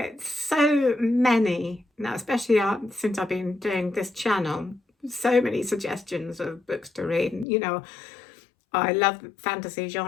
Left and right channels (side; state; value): right; drops out; at 7.5 s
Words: so many now, especially since I've been doing this channel, so many suggestions of books to read. I love fantasy